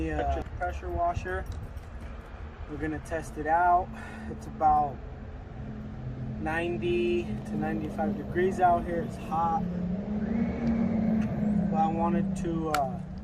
a pressure washer. We're gonna test it out. It's about 90 to 95 degrees out here. It's hot, but I wanted to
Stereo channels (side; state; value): both; identical; correlation 1.00